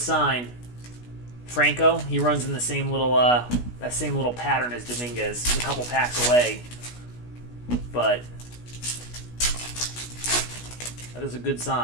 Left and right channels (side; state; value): right; late; 16 ms